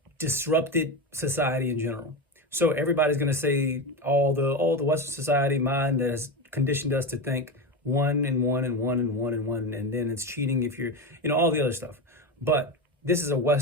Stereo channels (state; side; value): normal; both; correlation 0.18